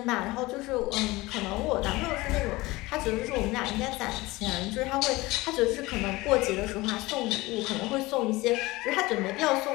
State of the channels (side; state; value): right; quieter; 20.7 dB